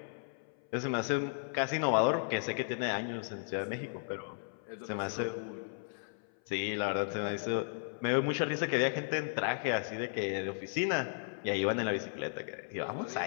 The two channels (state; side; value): silent; right; 54 dB below the other